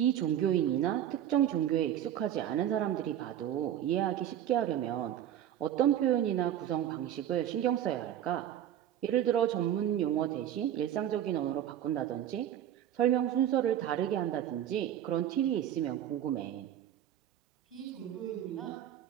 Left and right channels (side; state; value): left; quieter; 10.9 dB